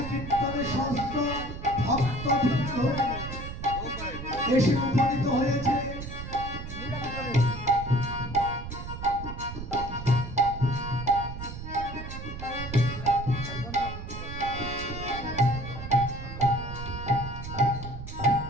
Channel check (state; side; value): noise; right; rumble, 9 dB below the sound